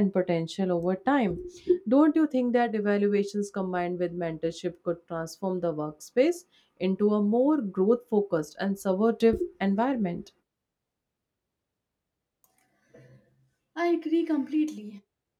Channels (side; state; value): both; identical; correlation 1.00